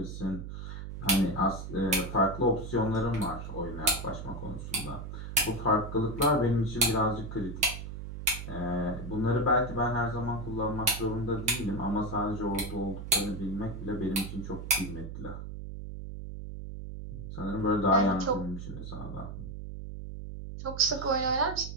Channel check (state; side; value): noise; right; hum, 8 dB below the sound